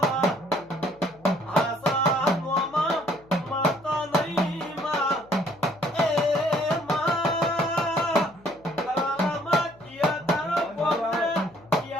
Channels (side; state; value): left; noise; hum, 26 dB below the sound